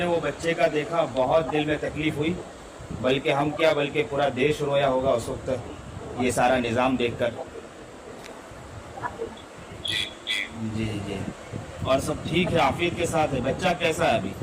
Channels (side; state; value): both; identical; correlation 1.00